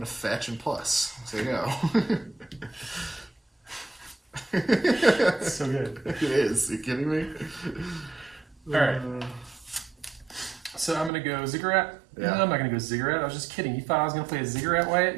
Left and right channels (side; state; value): left; drops out; at 11.1 s